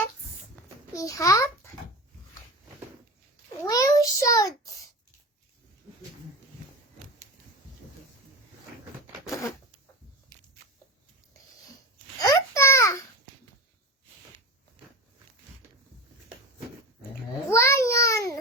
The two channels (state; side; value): normal; both; correlation 0.27